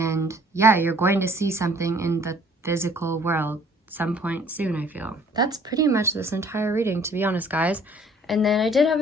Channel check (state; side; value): normal; both; correlation 0.56